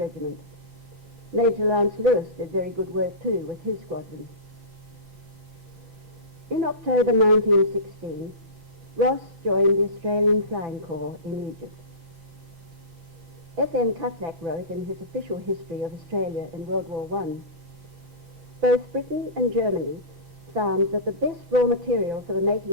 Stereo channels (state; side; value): late; left; 6.4 ms